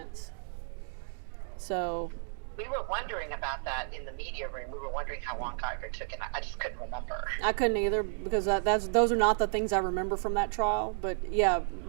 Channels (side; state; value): left; silent; 56 dB below the other